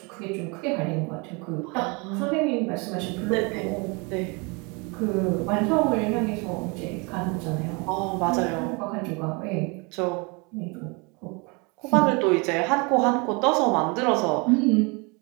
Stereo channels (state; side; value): quieter; left; 30.1 dB